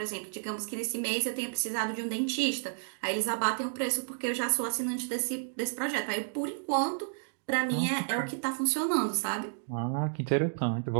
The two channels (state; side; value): silent; left; digital silence